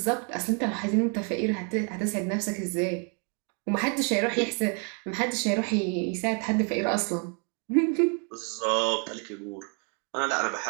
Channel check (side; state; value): left; quieter; 38.5 dB